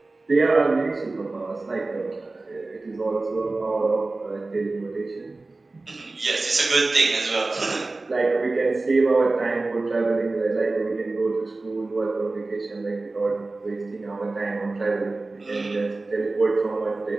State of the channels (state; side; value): quieter; left; 3.3 dB